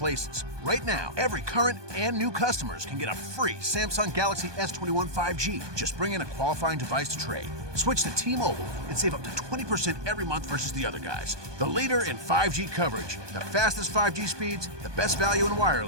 Right now, every current and new customers can get a free Samsung Galaxy S21 5G. Just bring in a qualifying device to trade. Switch to T-Mobile and save up to 20% every month versus the other guys. The leader in 5G coverage, the fastest 5G speeds, the best value in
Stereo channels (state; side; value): late; left; 1.2 ms